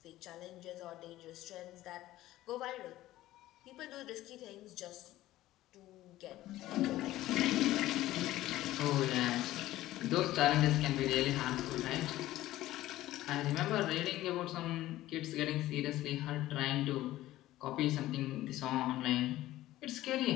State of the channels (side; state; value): right; quieter; 15.5 dB